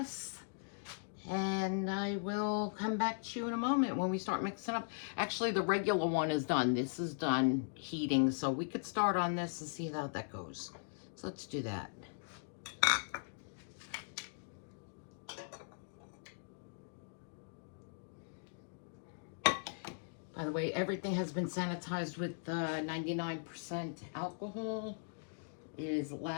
And I will come back to you in a moment when we start mixing up. Actually, the regular one is done. This is done heating, so we could start on this and see how that goes. So let's do that. By the way, everything has been sanitized with 99% alcohol. It is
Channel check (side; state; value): right; silent; digital silence